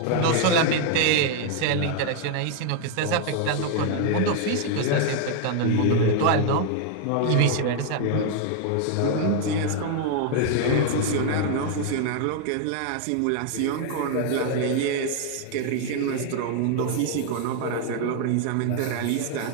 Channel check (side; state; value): both; different; correlation 0.00